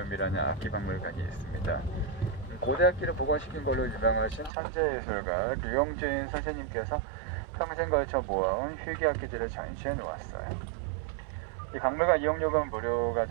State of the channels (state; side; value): drops out; left; at 4.5 s